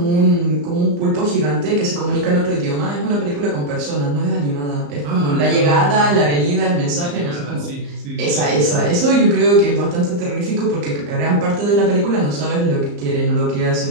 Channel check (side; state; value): left; late; 34 ms